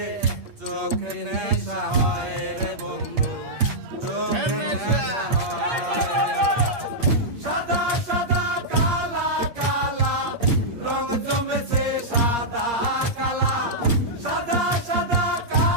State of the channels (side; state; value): left; late; 8.5 ms